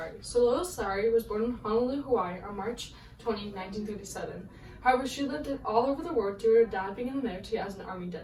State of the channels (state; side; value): identical; both; correlation 1.00